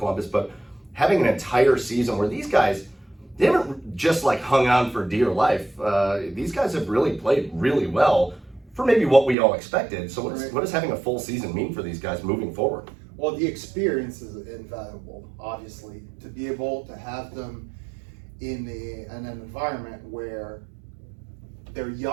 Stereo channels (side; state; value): left; drops out; at 9.3 s